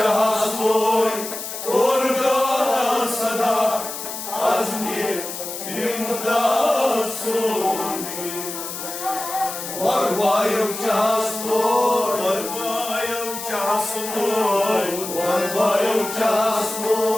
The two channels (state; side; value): noise; left; hiss, 8 dB below the sound